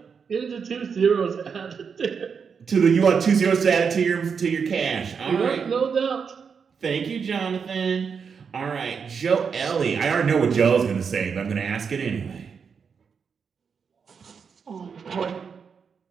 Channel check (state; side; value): quieter; left; 6.2 dB